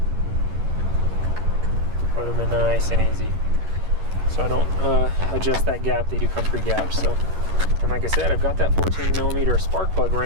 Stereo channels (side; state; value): left; late; 11 ms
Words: Put them in nice and easy, so I don't adjust that gap. They do come pre-gapped. So, and like I said, I've got that 14 millimeter spark plug